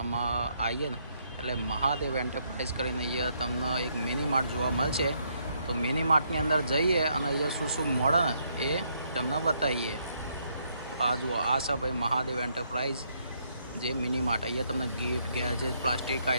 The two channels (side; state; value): both; inverted; correlation -0.73